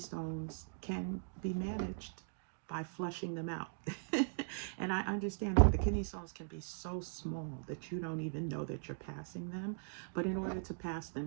can be managed by flushing them out. And I understand that the kidney stones can be so small that you don't even know that you're passing them. But in order to pass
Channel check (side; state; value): left; silent; digital silence